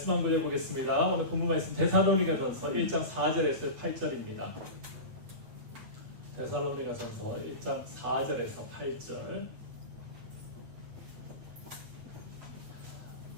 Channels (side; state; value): left; late; 8.5 ms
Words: 한 구절 보겠습니다. 오늘 본문 말씀 데살로니가전서 1장 4절에서 8절입니다. 데살로니가전서 1장 4절에서 8절.